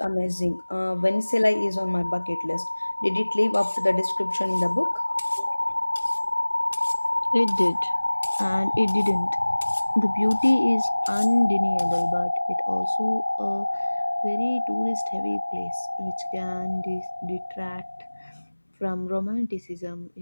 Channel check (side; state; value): both; inverted; correlation -1.00